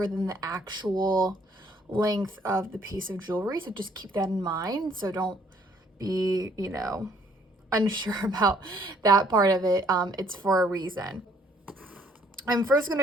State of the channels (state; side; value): normal; both; correlation 0.63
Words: than the actual length of the piece of jewelry. So just keep that in mind. So don't be, unsure about that part of it. It's for a reason. I'm first